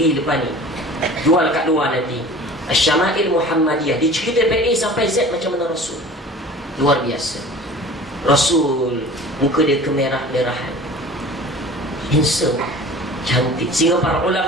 depan ni, jual kat luar nanti. Syama'il Muhammadiyah dicerita dari A sampai Z macam mana Rasul. Luar biasa. Rasul muka dia kemerah-merahan, handsome, cantik, sehingga para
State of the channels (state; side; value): normal; both; correlation 0.42